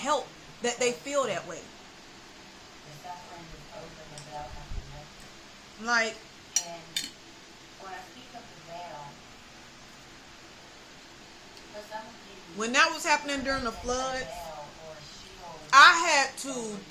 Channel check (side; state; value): both; identical; correlation 1.00